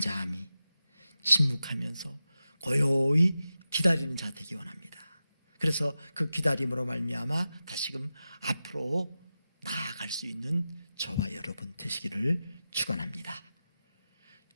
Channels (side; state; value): both; inverted; correlation -0.92